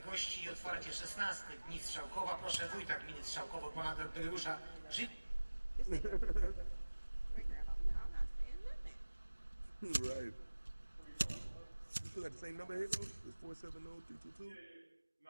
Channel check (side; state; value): both; inverted; correlation -1.00